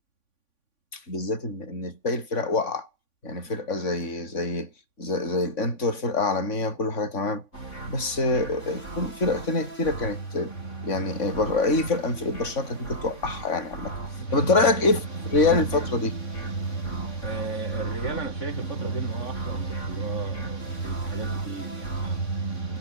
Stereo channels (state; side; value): late; right; 3.5 ms